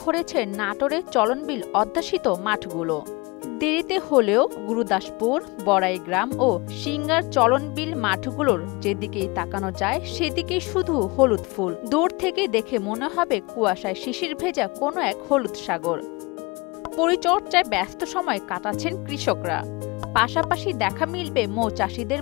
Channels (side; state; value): right; quieter; 25.8 dB